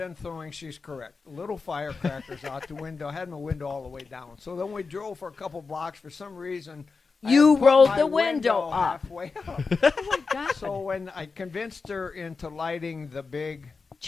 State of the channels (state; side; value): quieter; right; 4.5 dB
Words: throwing, she's correct, little firecrackers out the window. I had my window all the way down. So then we drove for a couple blocks. For some reason, I You had put rolled my the window up. halfway up. Oh, my God. So when I convinced her into lighting the big